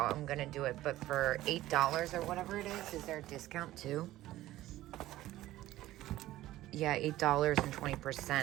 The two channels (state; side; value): quieter; left; 15.4 dB